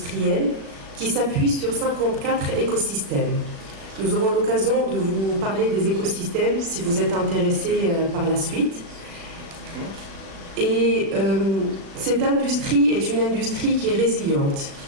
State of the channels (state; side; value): late; left; 36 ms